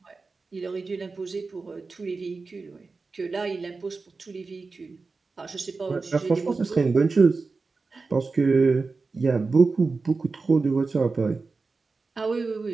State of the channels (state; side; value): quieter; left; 4.1 dB